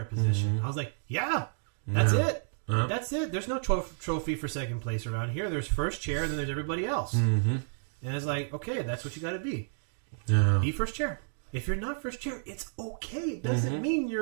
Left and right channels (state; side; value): silent; left; digital silence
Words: position. I was like, that's it. That's it. There's no trophy for second place around here. There's first chair, and then there's everybody else. And it's like, okay, that's what you got to be. Be first chair. If you're not first chair, it's okay. It doesn't mean